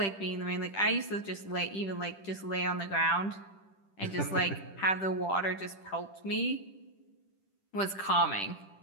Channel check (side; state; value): right; late; 10 ms